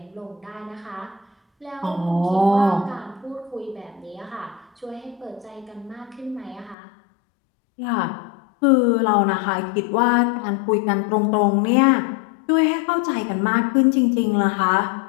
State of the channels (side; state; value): right; drops out; at 6.8 s